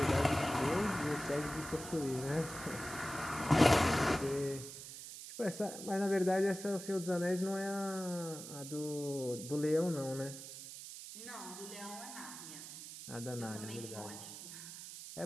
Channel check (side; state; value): right; noise; hiss, 11 dB below the sound